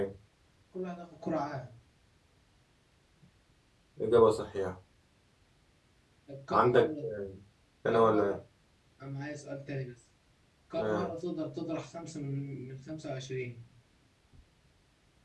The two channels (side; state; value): both; identical; correlation 1.00